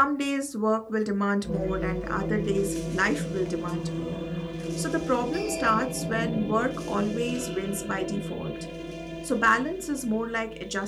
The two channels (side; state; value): both; identical; correlation 1.00